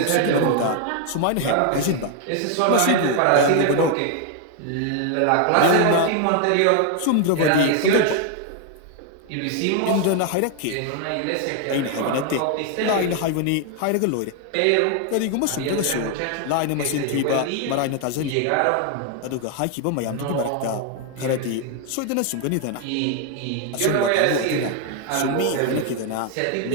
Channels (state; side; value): different; both; correlation 0.00